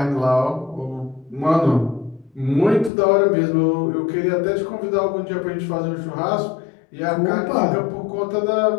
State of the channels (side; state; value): right; drops out; at 2.9 s